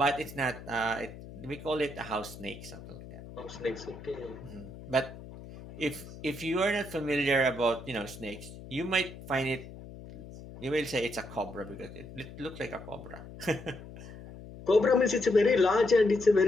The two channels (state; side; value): noise; left; hum, 15 dB below the sound